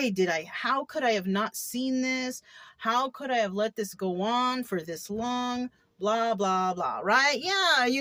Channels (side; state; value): both; identical; correlation 1.00